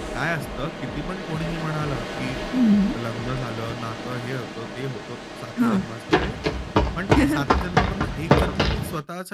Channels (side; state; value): both; identical; correlation 1.00